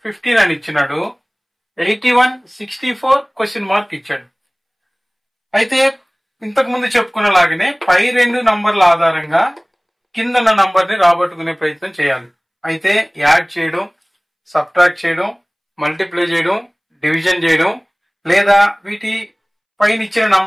15 అని ఇచ్చినాడు. 81, 64 క్వశ్చన్ మార్క్ ఇచ్చాడు. అయితే ఇంతకు ముందు చెప్పుకున్నలాగానే పై రెండు నంబర్ల ఆధారంగా కిందన్న నంబర్ ని రాబట్టుకునే ప్రయత్నం చేయాలి. అయితే యాడ్ చేయడం, సబ్ట్రాక్ట్ చేయడం, మల్టిప్లై చేయడం, డివిజన్ చేయడం, లేదా వీటి పైన ఇచ్చిన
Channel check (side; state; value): both; identical; correlation 1.00